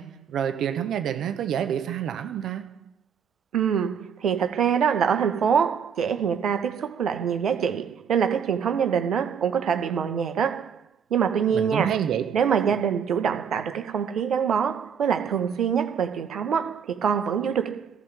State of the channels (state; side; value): quieter; left; 7.3 dB